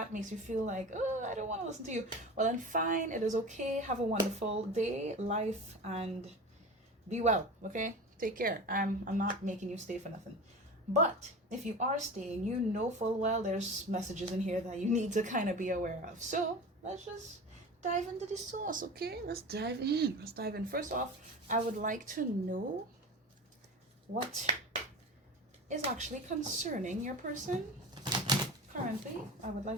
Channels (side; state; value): both; normal; correlation 0.32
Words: makes you feel like, oh, I don't want to listen to you, well then fine, it is okay. Have a wonderful day, life, and be well, okay? Take care. I'm not making you stay for nothing. But if you are staying, you know full well there's messages in here that you need to kind of be aware of. So let's just dive into the source, okay? Let's dive in. First off, I would like to know what is actually concerning your person currently. I would